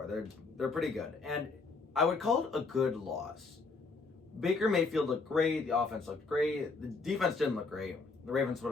They're pretty good, and I would call it a good loss. Baker Mayfield looked great. The offense looked great. The defense didn't look great. The Ravens put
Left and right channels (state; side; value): quieter; right; 4.1 dB